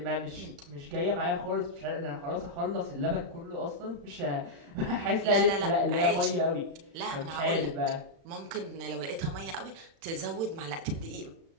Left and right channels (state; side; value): late; left; 36 ms